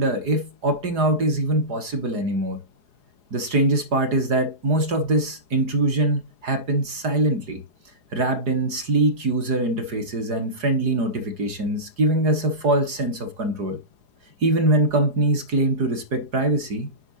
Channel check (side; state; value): left; late; 4.8 ms